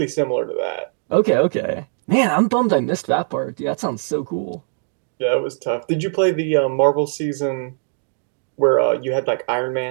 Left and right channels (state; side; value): silent; left; digital silence